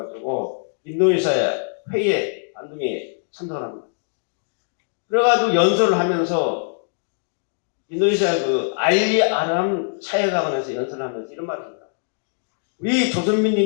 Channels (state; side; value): silent; right; digital silence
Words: 인도네시아 회의에 안동에 참석을 합니다. 그래가지고 연설을 하면서 인도네시아 그 알리 아람 차해가원에서 연설을 하면서 이런 말을 합니다. 우리